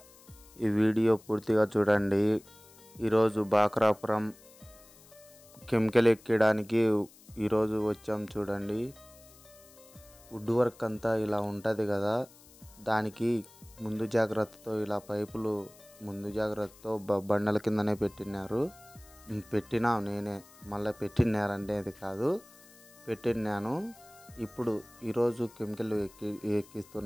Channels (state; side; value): noise; left; hiss, 24 dB below the sound